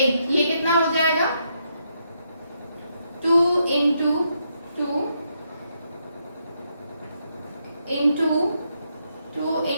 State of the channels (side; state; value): both; inverted; correlation -0.79